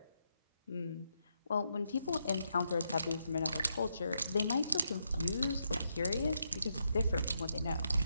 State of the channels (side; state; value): both; inverted; correlation -0.80